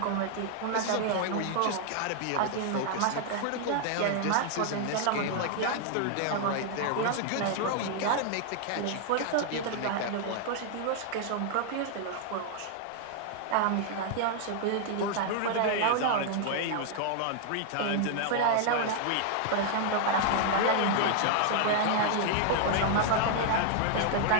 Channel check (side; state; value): both; different; correlation 0.00